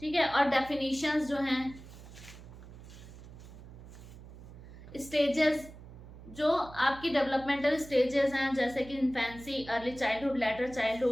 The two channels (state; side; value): noise; right; hum, 16 dB below the sound